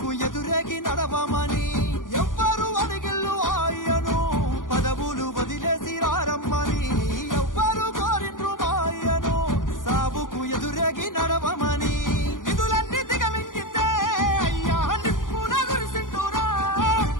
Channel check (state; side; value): late; right; 0.89 ms